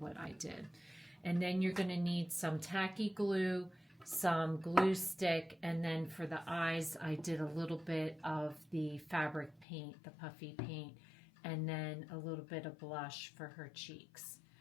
I did. And then you're going to need some tacky glue, some glue stick, and then for the eyes, I did a little bit of the fabric paint, the puffy paint, and then a little bit of blush for her cheeks.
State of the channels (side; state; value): right; drops out; at 9.7 s